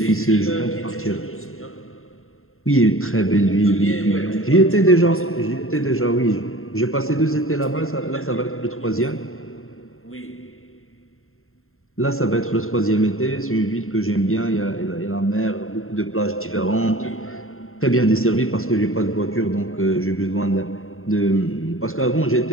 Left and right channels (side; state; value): right; late; 0.61 ms